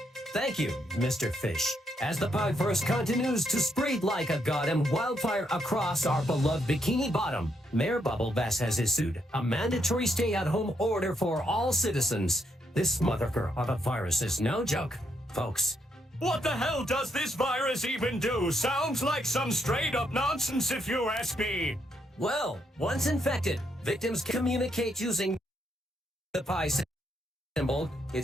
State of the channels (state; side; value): normal; both; correlation 0.77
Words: Thank you, Mr. Fish. As the Pieverse continues to spread like a goddamn wildfire across our beloved Bikini Bottom, Mayor Bubblebass has issued a mandatory stay-at-home order for all citizens. This motherfucker of a virus is no joke, folks. What the hell does this virus even do? Sounds like some straight-up nonsense if you ask me. Well, once infected, victims communicate using the pie symbol.